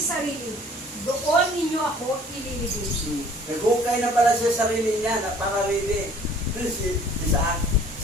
doon ninyo ako ililibing. Naghukay na pala siya sarili niya, napangarili. Si Isaac.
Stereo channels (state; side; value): normal; both; correlation 0.54